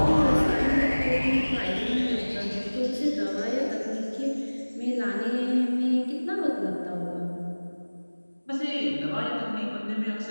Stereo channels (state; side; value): inverted; both; correlation -1.00